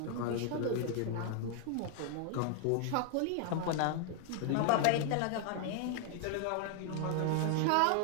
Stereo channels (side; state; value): both; different; correlation 0.00